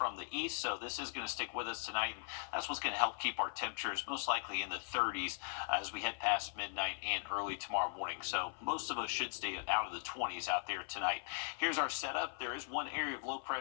the east, so this is going to stick with us tonight, and that's what's going to help keep our temperatures most likely in the 30s as we head past midnight and early tomorrow morning. So most of us should stay out of the 20s out there tonight. Here's our setup. There is one area of low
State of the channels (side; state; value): right; silent; 52 dB below the other